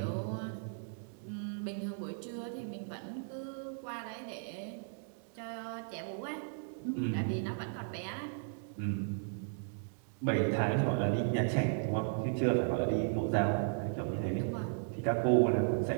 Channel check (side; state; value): left; silent; digital silence